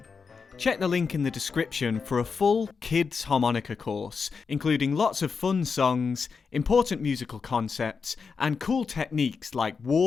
Check the link in the description for a full kids harmonica course, including lots of fun songs, important musical concepts, and cool techniques like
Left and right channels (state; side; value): quieter; right; 5.4 dB